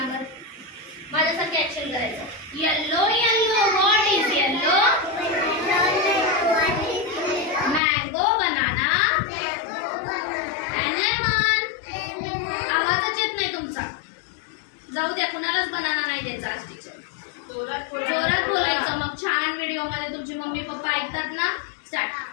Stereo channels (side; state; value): right; drops out; at 7.8 s